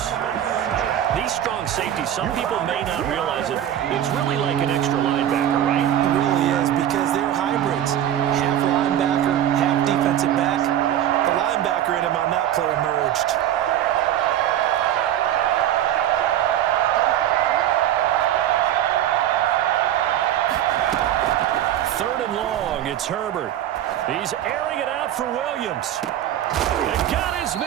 These strong safeties, some people may not realize it. It's really like an extra linebacker, right? It really is, because they're hybrids. Half linebacker, half defensive back. The linebacker in him on that play emerged. Third and long, it's Herbert. He's airing it out for Williams. And got his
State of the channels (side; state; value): left; quieter; 11.3 dB